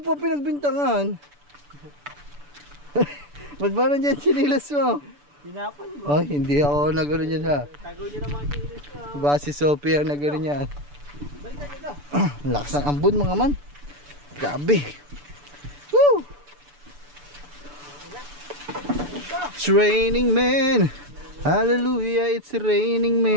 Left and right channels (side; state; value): left; late; 6.9 ms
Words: pa pinagbintangan. Ba't ba nandiyan sinilas mo? Sinapon mo. Hindi ako nagano niyan ha. Tago niyo na mga kinilis ko. Ba si Sophie ang nagano niyan. Balikan nyo daw. Lakas ng ambon mga man. Grabe. Woo! It's raining man. Hallelujah, it's raining